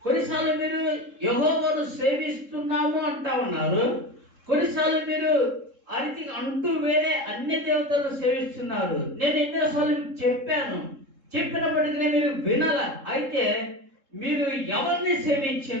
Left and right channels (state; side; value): late; left; 3.7 ms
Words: కొన్నిసార్లు మీరు యెహోవాను సేవిస్తున్నాము అంటా ఉన్నారు, కొన్నిసార్లు మీరు అరితి అంటూ వేరే అన్ని దేవతలను సేవిస్తున్నారు. నేను ఎన్నోసార్లు చెప్పినప్పటికీ మీరు వినాల. అయితే మీరు ఎవరిని